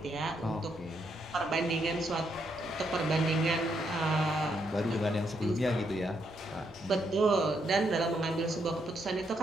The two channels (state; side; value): normal; both; correlation 0.77